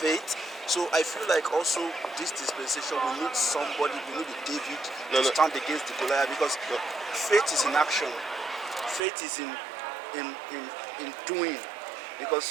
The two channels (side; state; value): left; drops out; at 9.1 s